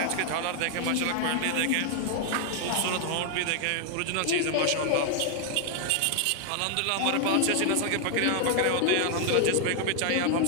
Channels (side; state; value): both; different; correlation 0.00